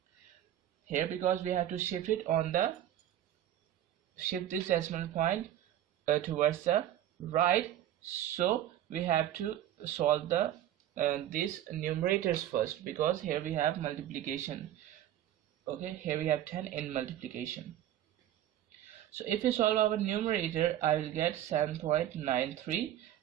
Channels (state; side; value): quieter; left; 11.9 dB